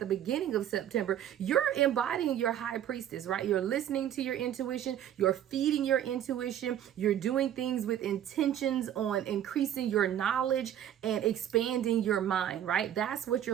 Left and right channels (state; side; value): quieter; left; 10.7 dB